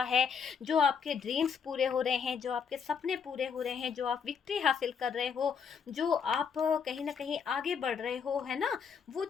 है, जो आपके ड्रीम्स पूरे हो रहे हैं, जो आपके सपने पूरे हो रहे हैं, जो आप विक्ट्री हासिल कर रहे हो, जो आप कहीं ना कहीं आगे बढ़ रहे हो, है ना, वो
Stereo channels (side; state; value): right; quieter; 6.5 dB